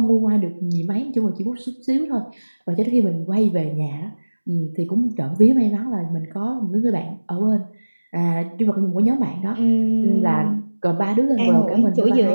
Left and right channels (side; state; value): both; inverted; correlation -1.00